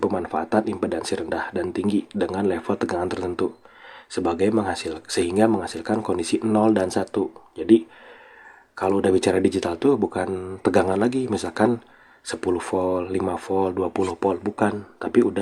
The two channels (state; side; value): identical; both; correlation 1.00